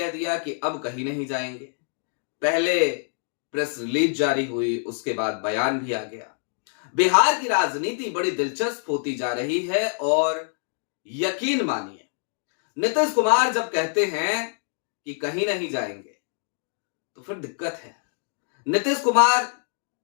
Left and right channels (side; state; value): right; silent; 60 dB below the other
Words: दिया कि अब कहीं नहीं जाएंगे। पहले प्रेस रिलीज जारी हुई, उसके बाद बयान भी आ गया। बिहार की राजनीति बड़ी दिलचस्प होती जा रही है, और यकीन मानिए, नीतीश कुमार जब कहते हैं कि कहीं नहीं जाएंगे तो फिर दिक्कत है। नीतीश कुमार